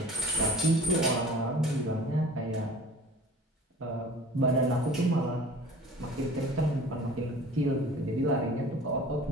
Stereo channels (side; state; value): both; normal; correlation 0.44